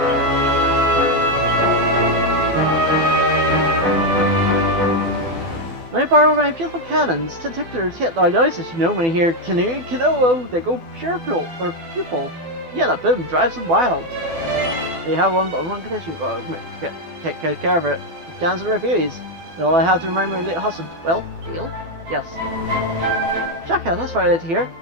Let me borrow my beautiful cannons. Tentaculars hit our noises, you know, when you hear canoe, canoe, they go pupil. Yeah, that boom drives them wild. They have one condition. Take care of it. The cannons are refugees. All I have to remind my late husband. Well, heal? Yes. Jacka, that's what I did here.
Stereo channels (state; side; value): late; left; 12 ms